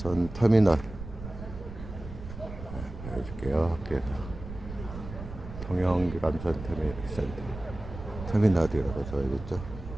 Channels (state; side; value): noise; right; rumble, 11 dB below the sound